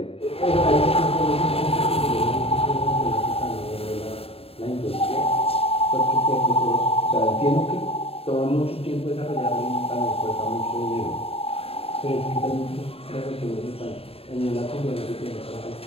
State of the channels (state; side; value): late; right; 0.28 ms